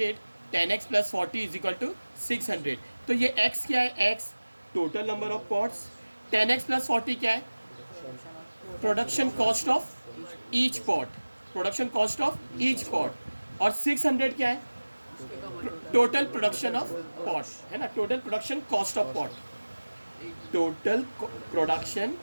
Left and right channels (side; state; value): both; inverted; correlation -1.00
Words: 10x plus 40 is equal to 600। तो ये x क्या है, x total number of pots, 10x plus 40 क्या है production cost of each pot, production cost of each pot, और 600 क्या है total production of pot, है ना, total production cost of pot, total production,